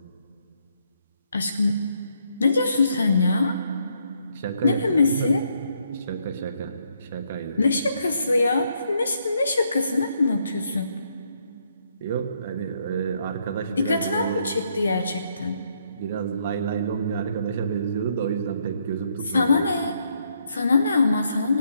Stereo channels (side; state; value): both; inverted; correlation -0.73